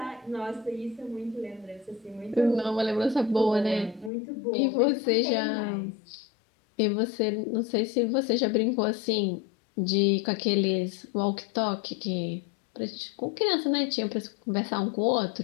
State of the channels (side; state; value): right; drops out; at 4.1 s